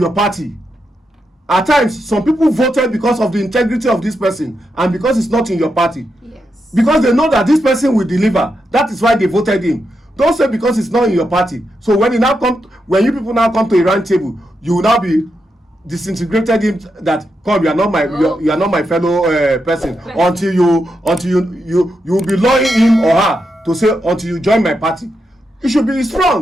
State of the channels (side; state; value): both; normal; correlation 0.85